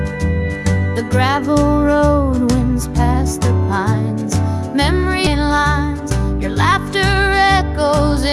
The gravel road winds past the pines. Memory lines, your laughter echoes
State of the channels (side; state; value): both; identical; correlation 1.00